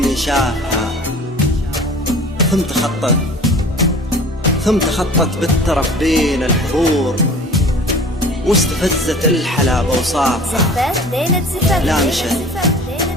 شافها، ثم تخطت بالترف بين الحضور، واستفزت الحلا بوصافها.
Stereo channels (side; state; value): both; normal; correlation 0.44